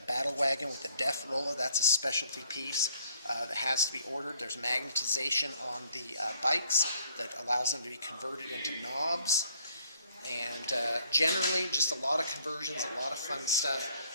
battle wagon with a death roller. That's a specialty piece that has to be ordered. There's magnetization on the bikes that allows them to be converted into knobs. And generally, just a lot of conversions, a lot of fun stuff.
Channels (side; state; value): both; inverted; correlation -0.63